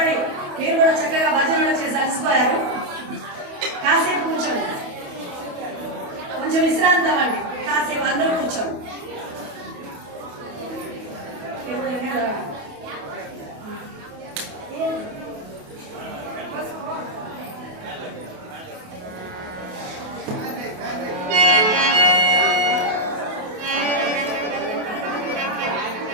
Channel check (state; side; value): late; left; 28 ms